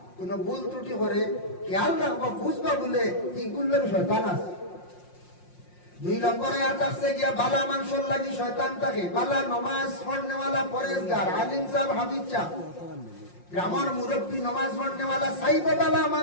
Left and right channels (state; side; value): late; right; 5.6 ms